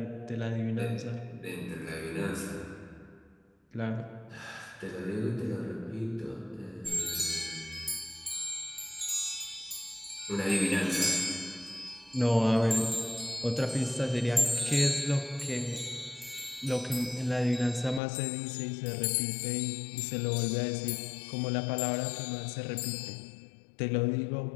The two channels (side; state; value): right; drops out; at 18.0 s